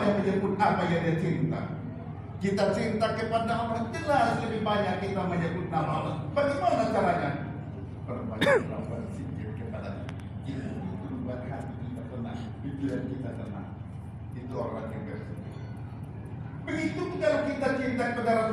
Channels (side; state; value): both; identical; correlation 1.00